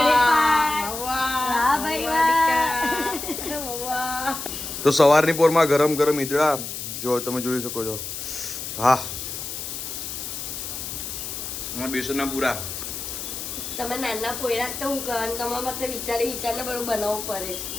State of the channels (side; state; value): left; noise; hiss, 7 dB below the sound